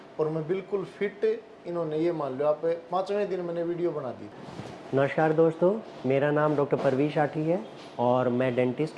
और मैं बिल्कुल फिट, इन्होंने ये मान लो आप 5वें दिन मैंने वीडियो बना दी। नमस्कार दोस्तों, मेरा नाम डॉक्टर परवीश आठी है और मैं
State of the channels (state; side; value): identical; both; correlation 1.00